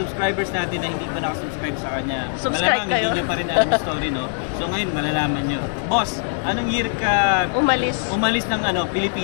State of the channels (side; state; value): right; silent; digital silence